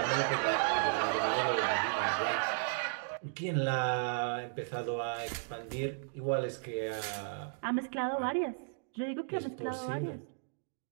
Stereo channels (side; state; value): left; silent; digital silence